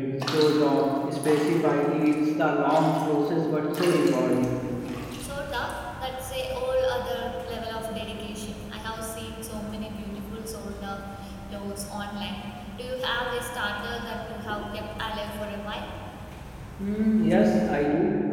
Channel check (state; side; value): identical; both; correlation 1.00